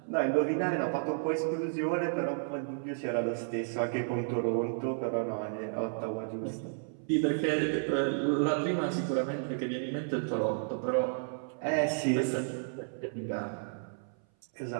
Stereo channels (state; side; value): silent; left; 56 dB below the other